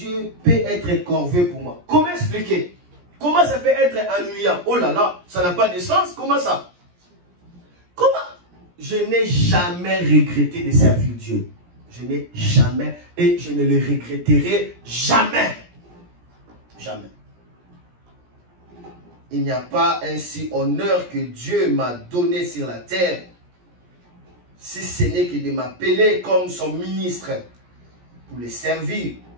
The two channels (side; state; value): left; late; 17 ms